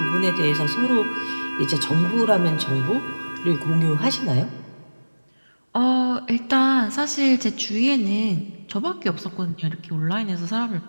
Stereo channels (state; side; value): inverted; both; correlation -1.00